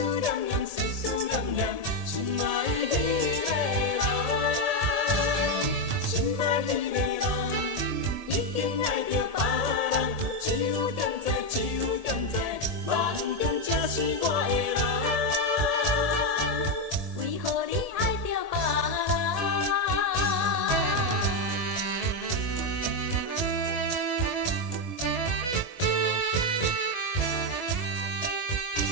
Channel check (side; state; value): left; late; 1.7 ms